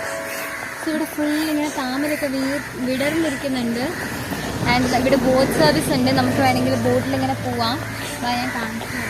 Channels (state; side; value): identical; both; correlation 1.00